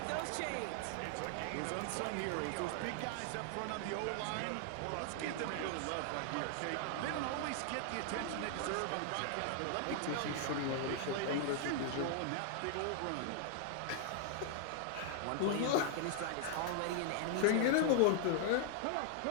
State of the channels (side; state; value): both; different; correlation 0.00